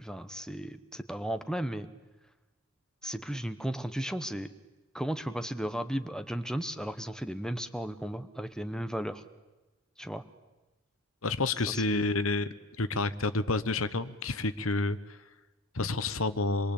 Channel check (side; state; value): both; normal; correlation 0.48